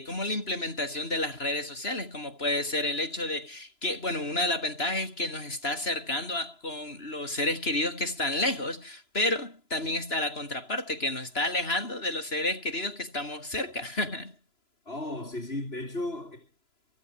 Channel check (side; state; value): right; late; 3.0 ms